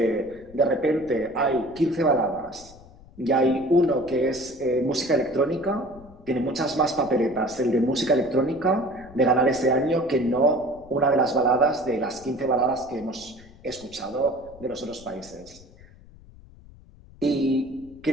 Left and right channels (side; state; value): left; noise; rumble, 22 dB below the sound